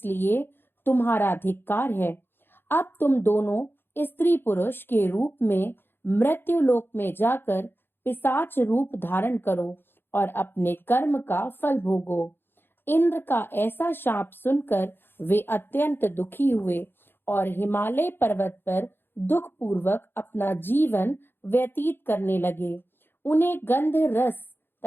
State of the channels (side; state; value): right; late; 0.10 ms